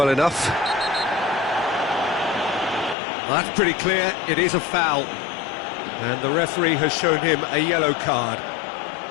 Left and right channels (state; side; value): drops out; right; at 3.0 s